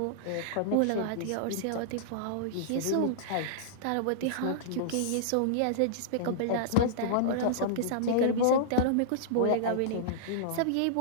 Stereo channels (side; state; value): both; different; correlation -0.02